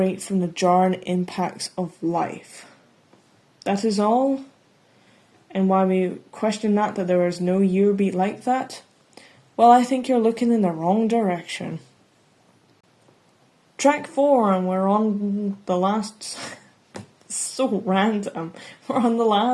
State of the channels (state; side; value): identical; both; correlation 1.00